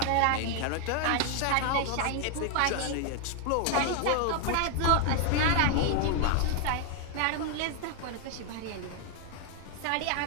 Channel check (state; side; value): different; both; correlation 0.01